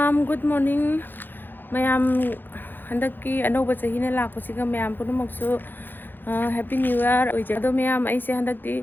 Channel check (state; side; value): late; right; 0.094 ms